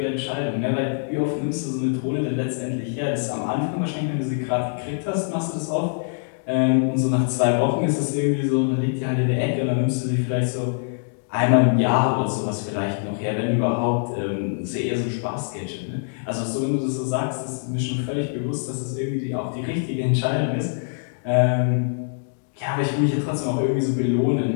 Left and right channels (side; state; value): right; silent; digital silence